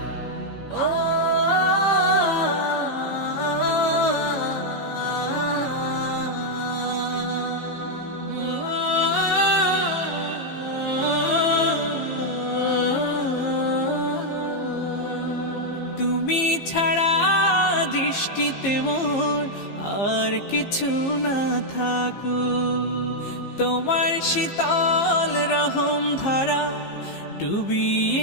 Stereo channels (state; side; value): late; right; 15 ms